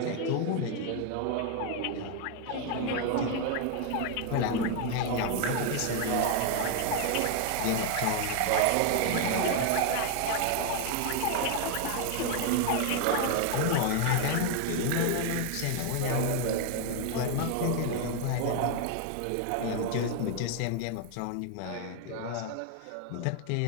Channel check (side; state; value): both; different; correlation 0.01